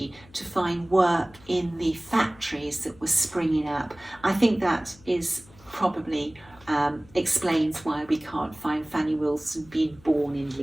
to find work in the factories that were springing up. I think that is probably explains why we can't find Fanny Wilson being born in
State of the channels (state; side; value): noise; left; hum, 24 dB below the sound